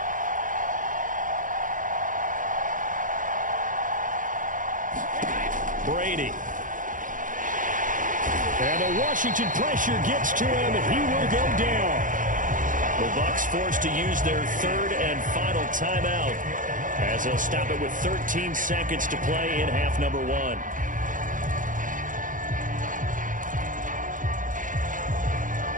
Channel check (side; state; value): left; late; 0.38 ms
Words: Brady. And the Washington pressure gets to him, and he will go down. The Bucs forced to use their 3rd and final timeout, as they'll stop it with 13 seconds to play in half number 1.